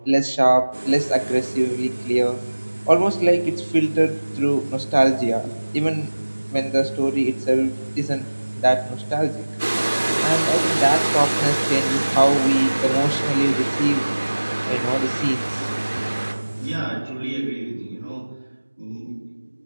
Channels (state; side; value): inverted; both; correlation -1.00